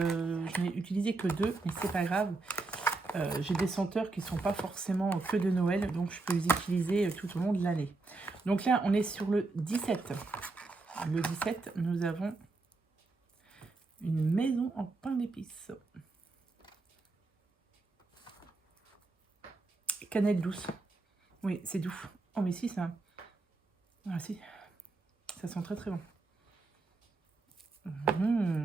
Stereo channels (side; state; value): left; quieter; 3.5 dB